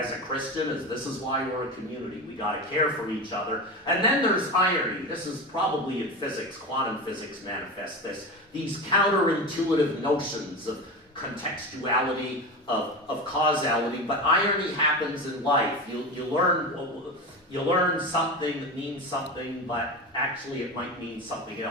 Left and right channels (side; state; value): both; normal; correlation 0.24